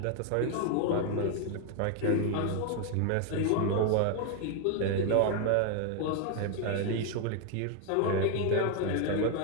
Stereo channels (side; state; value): both; different; correlation 0.00